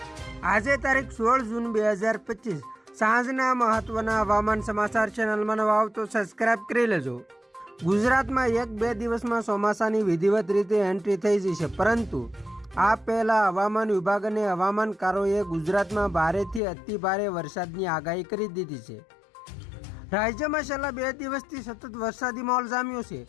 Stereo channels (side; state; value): right; drops out; at 16.6 s